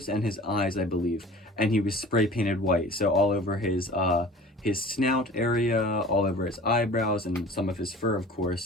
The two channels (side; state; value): both; normal; correlation 0.43